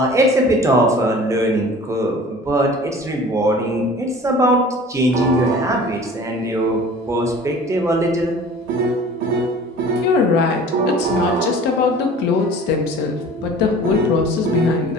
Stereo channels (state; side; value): normal; both; correlation 0.45